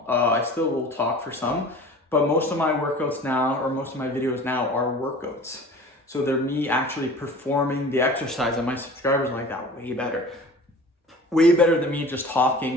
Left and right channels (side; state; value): both; normal; correlation 0.42